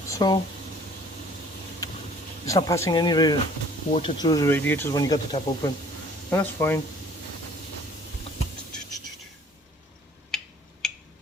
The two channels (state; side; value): normal; both; correlation 0.53